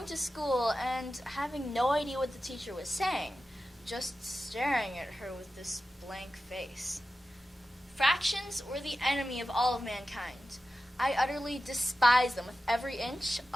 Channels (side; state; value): both; normal; correlation 0.93